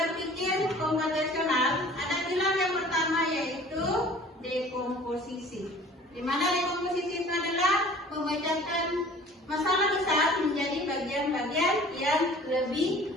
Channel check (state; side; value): normal; both; correlation 0.48